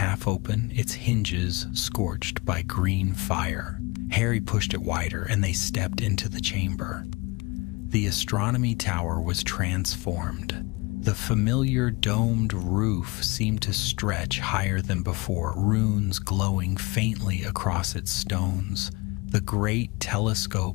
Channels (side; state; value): right; quieter; 25.5 dB